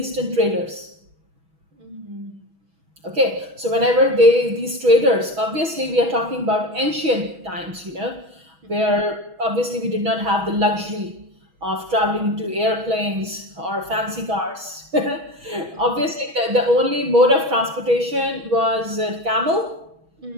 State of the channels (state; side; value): late; left; 6.2 ms